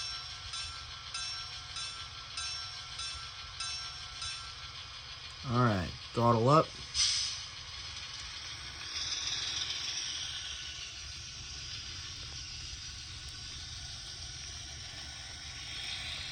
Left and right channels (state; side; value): identical; both; correlation 1.00